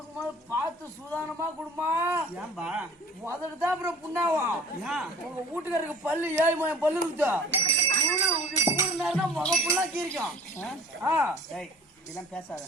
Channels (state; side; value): normal; both; correlation 0.47